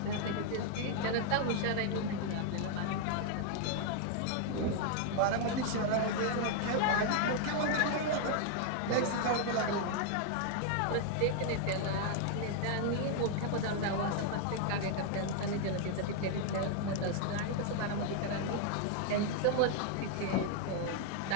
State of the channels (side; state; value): both; different; correlation 0.00